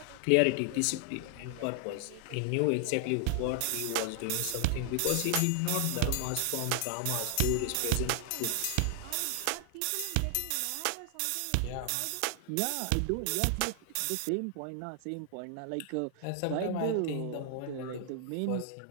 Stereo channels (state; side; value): different; both; correlation 0.00